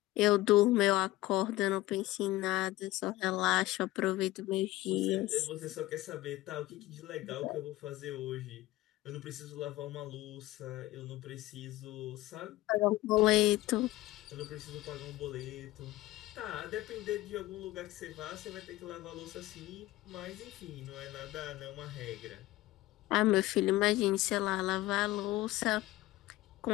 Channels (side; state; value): right; quieter; 17.5 dB